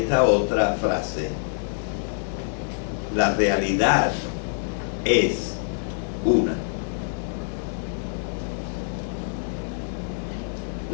otra frase: la realidad es una.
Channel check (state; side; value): silent; right; digital silence